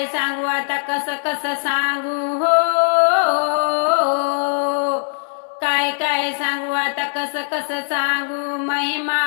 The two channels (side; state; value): right; silent; digital silence